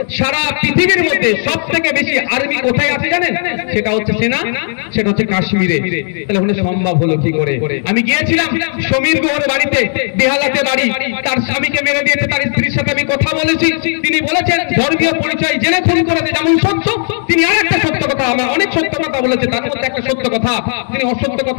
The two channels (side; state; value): right; silent; 64 dB below the other